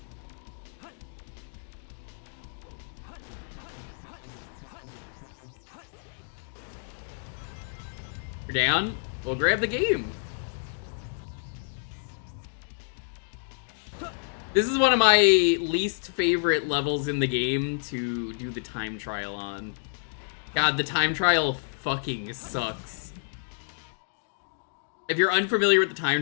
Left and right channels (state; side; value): silent; right; digital silence